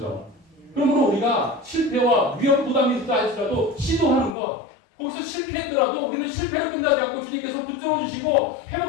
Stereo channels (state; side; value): drops out; right; at 4.4 s